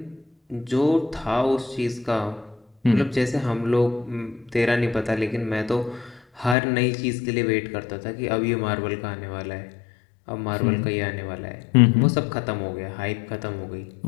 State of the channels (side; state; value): right; drops out; at 6.6 s